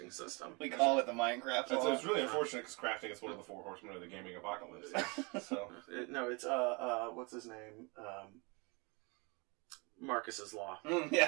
system. we call it the Minecraft law. It's really unfortunate because crafting is one of the 4 horsemen of the gaming apocalypse. So No, it's what's his name? Marcus's law.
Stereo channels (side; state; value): left; quieter; 29.5 dB